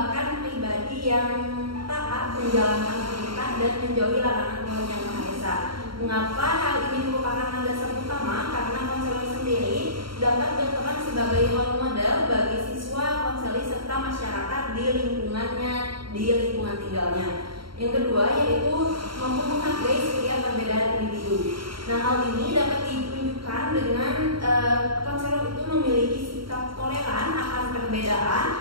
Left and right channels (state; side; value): late; left; 0.73 ms